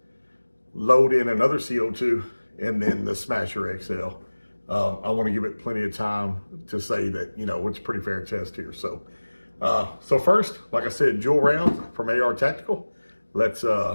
load in another CO2, and then the Smasher XL. I wanna give it plenty of time to say that, you know, it's a pretty fair test here. So first, like I said, Joules rounds from AR Tactical. Let's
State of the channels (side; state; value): both; inverted; correlation -1.00